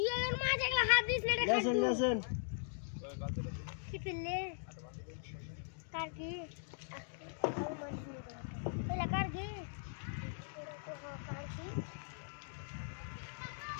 আর মাছ একলা হাত দিস না রে লেসেন কি পিলে কার কি এলা কার কি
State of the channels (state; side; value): silent; right; digital silence